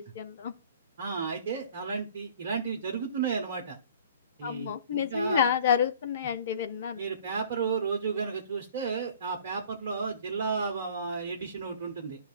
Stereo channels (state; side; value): inverted; both; correlation -0.50